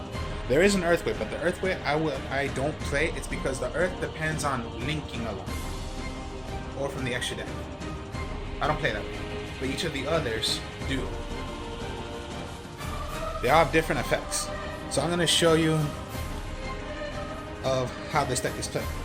There is an Earth Way, but the Earth Way I don't play. It's because the Earth depends on linking a lot, or from the extra deck. I don't play that way, but each of the others do. They all have different effects. So I'm going to show you of how this deck is played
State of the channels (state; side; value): identical; both; correlation 1.00